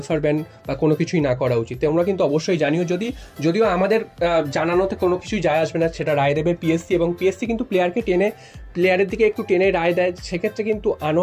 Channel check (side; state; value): both; identical; correlation 1.00